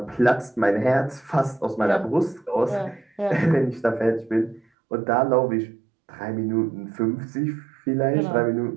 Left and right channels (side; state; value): left; drops out; at 4.6 s